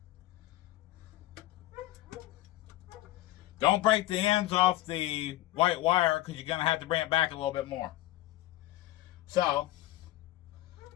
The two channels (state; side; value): quieter; right; 15.9 dB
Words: Don't break the ends off the white wire because you're going to have to bring it back a little bit more. So,